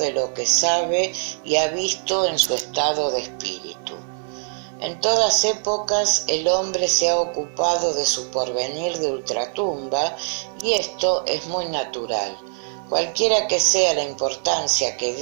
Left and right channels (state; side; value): silent; left; 64 dB below the other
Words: lo que sabe y ha visto en su estado de espíritu. En todas épocas el hombre se ha ocupado de su porvenir de ultratumba y esto es muy natural. Cualquiera que sea la importancia que